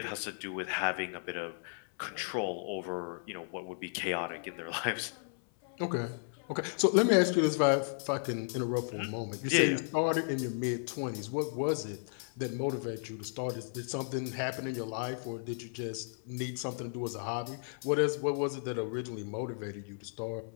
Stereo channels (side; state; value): right; silent; 55 dB below the other